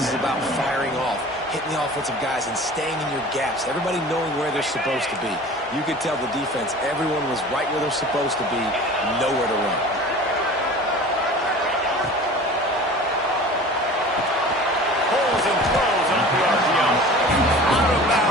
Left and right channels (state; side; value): normal; both; correlation 0.41